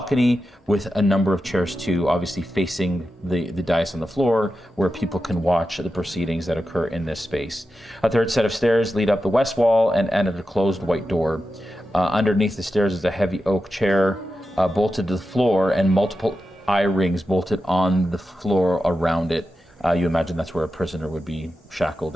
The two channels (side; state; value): both; normal; correlation 0.91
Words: with a number of chairs too, obviously facing the dais on the floor where people can watch the proceedings that occur in this space. A third set of stairs lead up the west wall and end at a closed white door. Underneath the stairs is a heavy oak chair bolted to the floor and multiple eye rings bolted on the floor around it. You imagine that's where a prisoner would be shackled